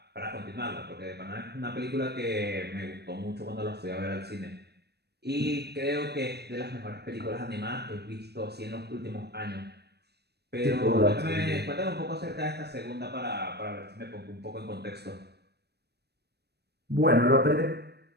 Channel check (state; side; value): late; left; 0.48 ms